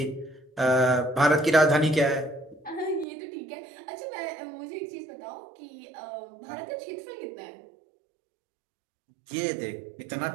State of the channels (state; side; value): drops out; left; at 3.1 s